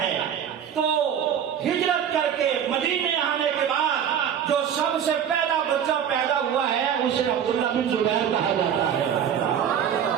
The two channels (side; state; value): left; quieter; 8.8 dB